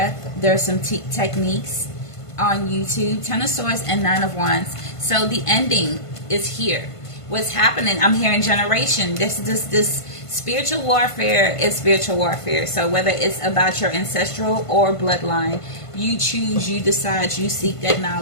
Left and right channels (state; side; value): late; right; 1.5 ms